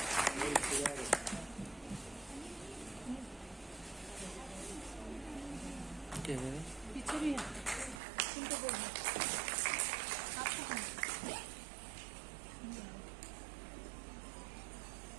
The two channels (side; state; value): left; drops out; at 8.0 s